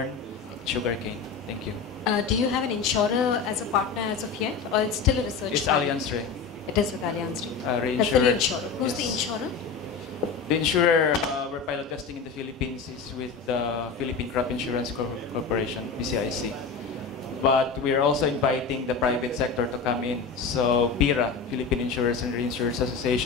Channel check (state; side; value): quieter; right; 5.3 dB